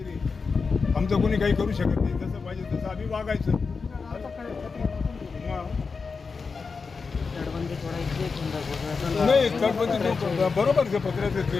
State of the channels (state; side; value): quieter; right; 4.8 dB